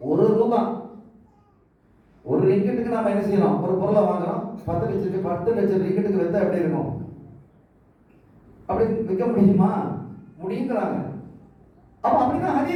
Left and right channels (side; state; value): both; identical; correlation 1.00